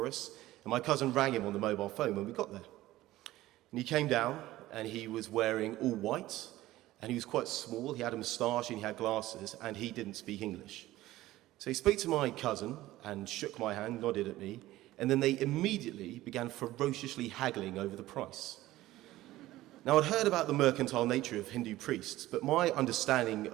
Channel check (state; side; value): quieter; left; 16.3 dB